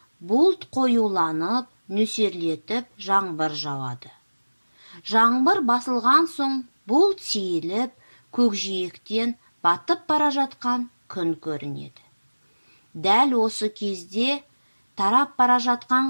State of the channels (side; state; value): both; inverted; correlation -1.00